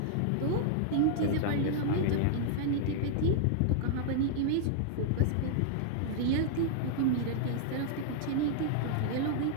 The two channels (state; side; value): different; both; correlation -0.01